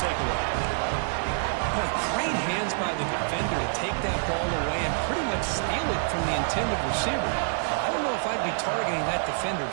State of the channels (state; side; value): silent; left; digital silence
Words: Boy, great hands by the defender to take that ball away and pretty much steal it from the intended receiver. I don't know if I'd be targeting that defender